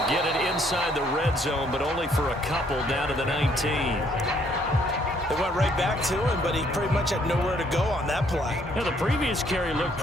get it inside the red zone, but only for a couple down to the 19. They went right back to him, but he pretty much had nowhere to go on that play. Yeah, the previous carry looked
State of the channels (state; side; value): normal; both; correlation 0.66